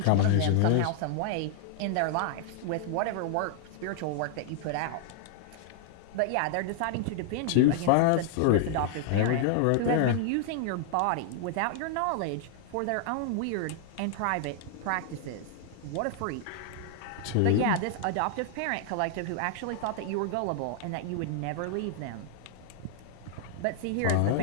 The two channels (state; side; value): different; both; correlation -0.01